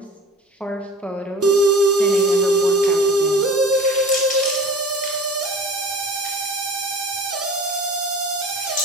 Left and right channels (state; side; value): normal; both; correlation 0.41